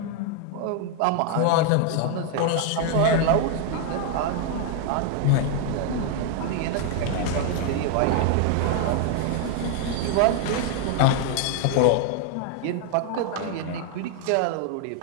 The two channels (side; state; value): both; different; correlation 0.00